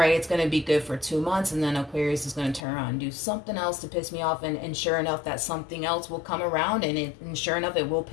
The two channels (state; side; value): drops out; right; at 2.7 s